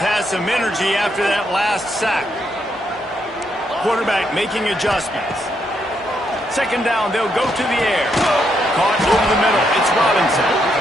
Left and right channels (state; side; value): normal; both; correlation 0.77